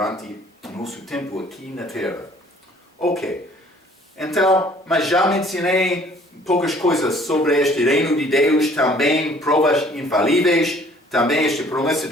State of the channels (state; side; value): normal; both; correlation 0.56